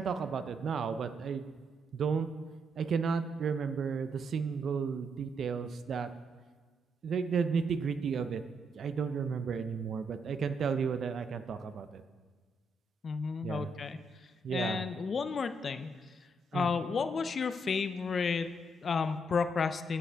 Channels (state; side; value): normal; both; correlation 0.76